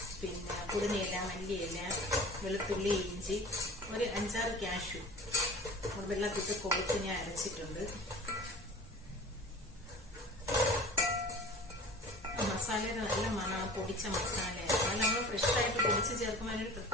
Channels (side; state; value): both; normal; correlation 0.41